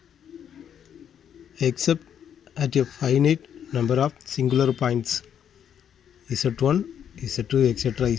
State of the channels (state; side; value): quieter; right; 8.9 dB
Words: except at a finite number of singular points z1, z2, etc.